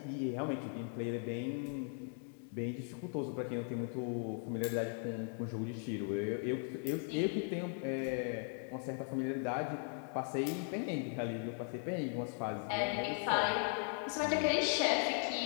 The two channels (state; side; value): silent; right; 52 dB below the other